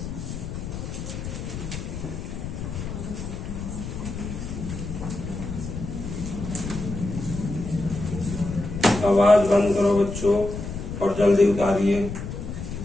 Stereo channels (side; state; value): left; noise; rumble, 7 dB below the sound